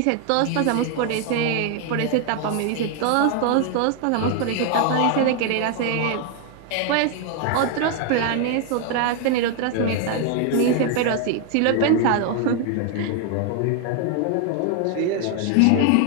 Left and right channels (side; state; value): both; different; correlation 0.00